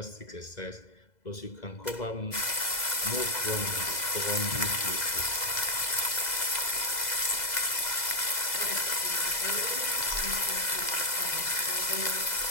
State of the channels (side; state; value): right; late; 2.0 ms